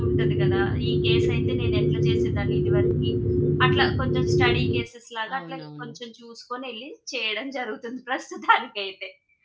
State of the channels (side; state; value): both; identical; correlation 1.00